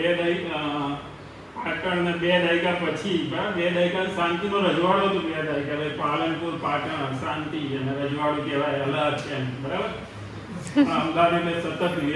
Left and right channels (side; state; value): both; identical; correlation 1.00